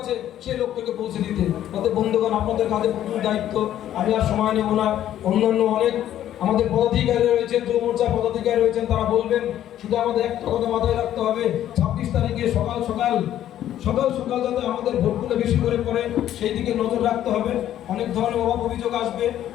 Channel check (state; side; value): quieter; right; 11.7 dB